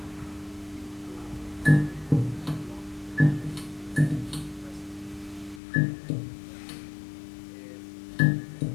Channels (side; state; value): right; drops out; at 5.6 s